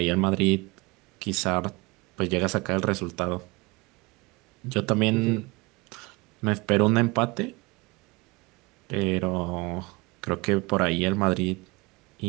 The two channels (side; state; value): left; quieter; 25.4 dB